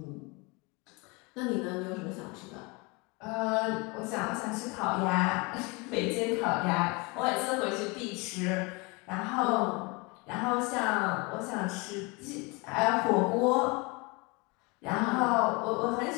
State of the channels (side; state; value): right; quieter; 27.8 dB